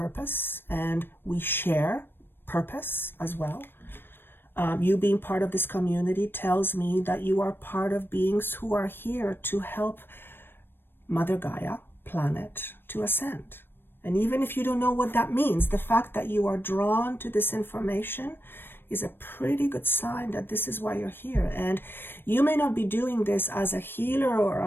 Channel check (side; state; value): right; late; 0.099 ms